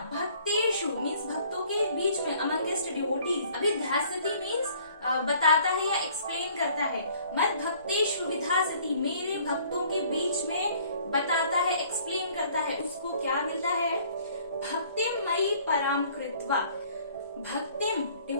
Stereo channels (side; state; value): both; inverted; correlation -0.57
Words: भक्तेषु मीन्स भक्तों के बीच में, अमंगेस्ट डिवोटीज। विधास्यति मीन्स बताता है या एक्सप्लेन करता है। मद भक्तेषु विधास्यति, मेरे भक्तों के बीच में बताता है, एक्सप्लेन करता है। उसको क्या मिलता है? भक्तिं मयि परां कृत्वा, भक्तिम